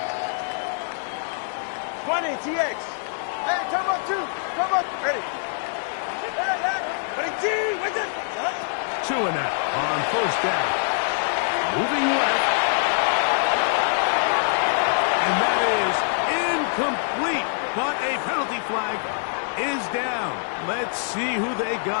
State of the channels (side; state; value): right; silent; digital silence